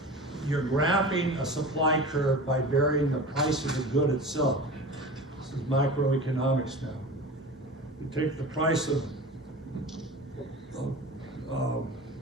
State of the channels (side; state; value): both; normal; correlation 0.34